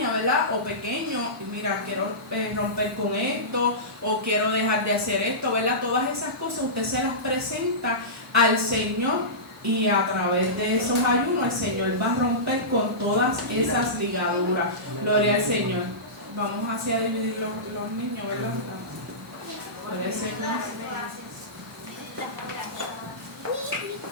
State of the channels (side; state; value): right; noise; hiss, 27 dB below the sound